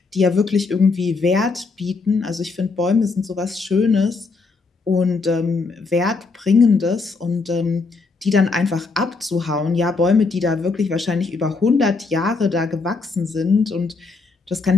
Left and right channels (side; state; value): right; quieter; 4.1 dB